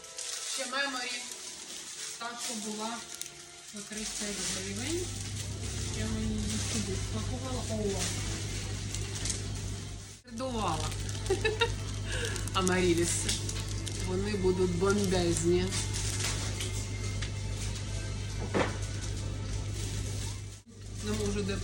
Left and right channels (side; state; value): both; identical; correlation 1.00